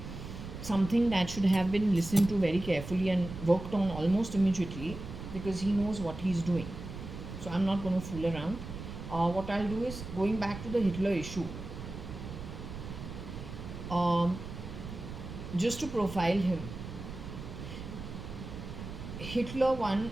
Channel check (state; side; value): noise; right; rumble, 10 dB below the sound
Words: something that should have been listened to very carefully and worked on almost immediately, because he knows what he's doing. So I'm not going to fool around. What I'll do is, going back to the Hitler issue, just to profile him, Hitler, one,